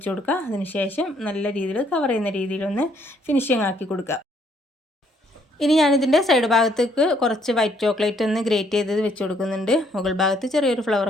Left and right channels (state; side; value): normal; both; correlation 0.67